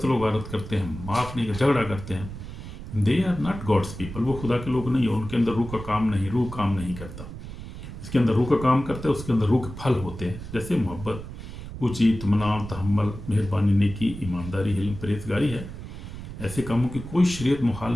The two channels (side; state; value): right; noise; rumble, 11 dB below the sound